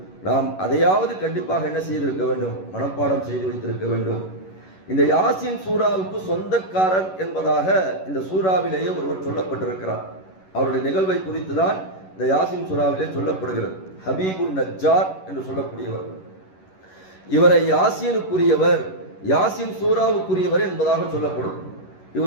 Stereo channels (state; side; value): late; right; 11 ms